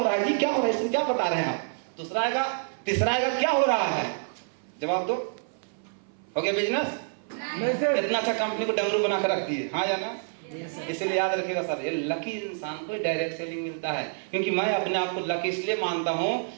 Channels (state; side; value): silent; left; 58 dB below the other